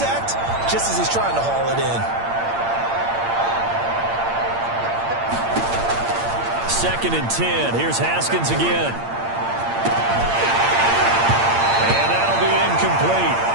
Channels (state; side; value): late; left; 8.7 ms